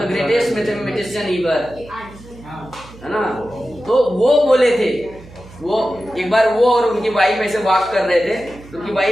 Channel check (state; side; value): noise; right; hum, 20 dB below the sound